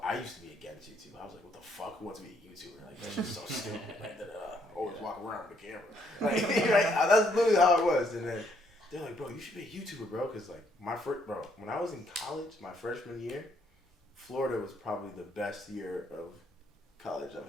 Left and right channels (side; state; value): both; normal; correlation 0.70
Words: I used to be against YouTube. I was like, what the fuck? Who wants to be a YouTuber? Like, that's just so stupid. Like, always walk around with a camera. Like, right? That's literally how it was. And then they're like, bro, you should be a YouTuber, bro. Because, like, when I was in college, my freshman year, Florida was probably the best year of college I've